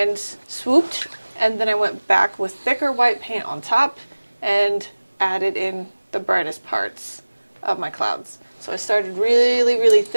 swooped, and then I went back with thicker white paint on top and added in the brightest parts of my clouds. So I started really, really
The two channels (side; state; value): both; inverted; correlation -1.00